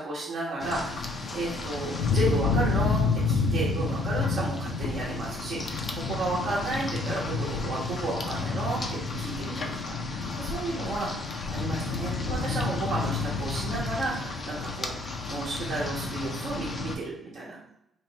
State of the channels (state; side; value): normal; both; correlation 0.62